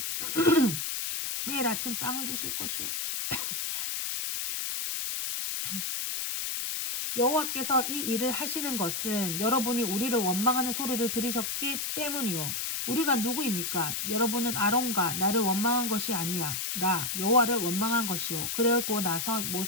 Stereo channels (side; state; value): left; noise; hiss, 2 dB below the sound